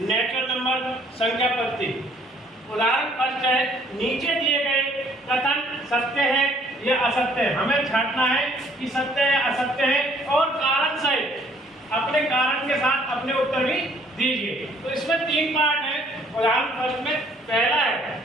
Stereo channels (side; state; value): both; normal; correlation 0.61